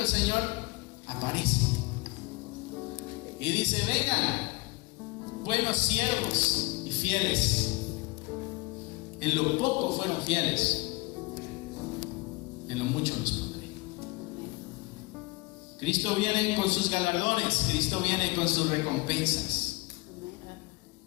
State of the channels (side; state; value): right; quieter; 25.1 dB